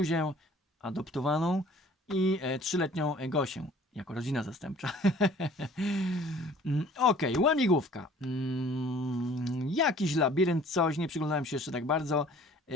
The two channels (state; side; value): normal; both; correlation 0.51